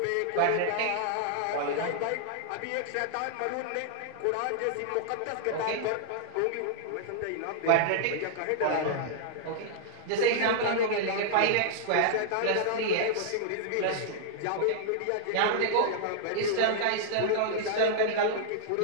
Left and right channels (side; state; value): both; different; correlation -0.01